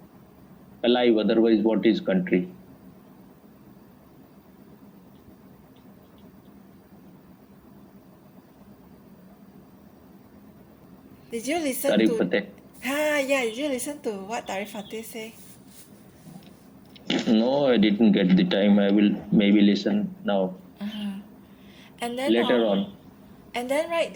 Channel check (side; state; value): both; identical; correlation 1.00